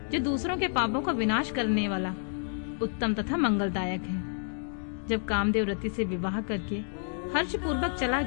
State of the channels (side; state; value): right; silent; digital silence